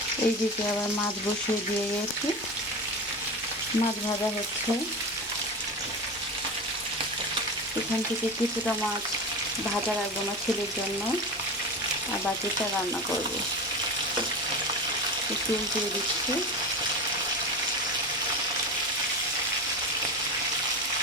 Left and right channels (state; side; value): normal; both; correlation 0.25